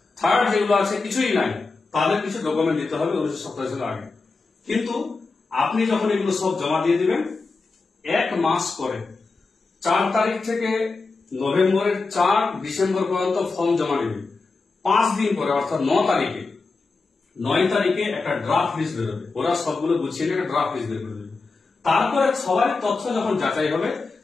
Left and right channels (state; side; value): quieter; right; 4.0 dB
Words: থার্ড যেগুলো আছে কিছুই নাই, তাদের কিছু ডকুমেন্ট দিতে হবে 1987 সালের আগে। কিন্তু আপনি যখন এগুলো সব জমা দিয়ে দিবেন, 1 মাস পরে 4 তারিখ থেকে নভেম্বরের 4 ডিসেম্বর পর্যন্ত ফর্ম জমা নেবে। 5 দিন পরে, অর্থাৎ 9 তারিখে একটা ড্রাফট লিস্ট বেরোবে। ওরা সবগুলো গুছিয়ে একটা ড্রাফট লিস্ট বের করে দেবে। তারপরে সবার তথ্য যখন যাচাই হবে,